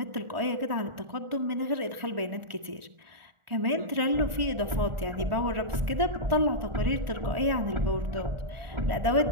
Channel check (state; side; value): late; left; 1.4 ms